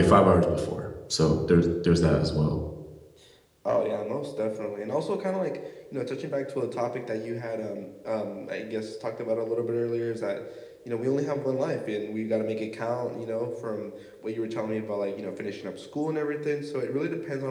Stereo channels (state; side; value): identical; both; correlation 1.00